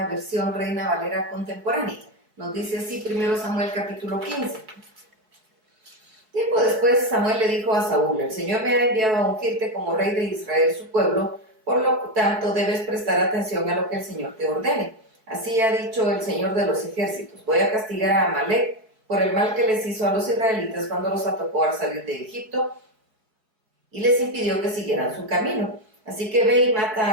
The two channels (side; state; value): left; late; 4.6 ms